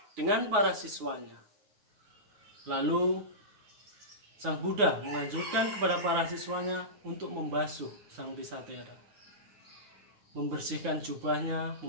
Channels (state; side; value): late; left; 9.6 ms